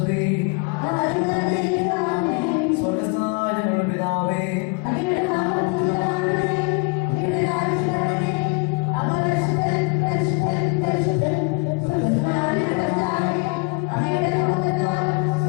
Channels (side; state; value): right; quieter; 30.6 dB